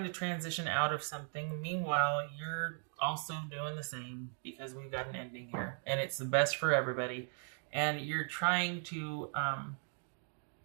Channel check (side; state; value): left; silent; 53 dB below the other